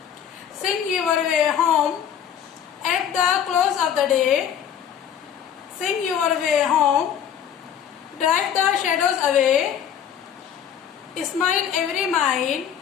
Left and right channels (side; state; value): right; quieter; 8.9 dB